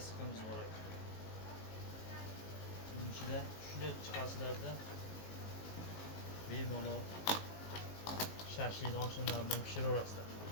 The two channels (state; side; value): late; right; 19 ms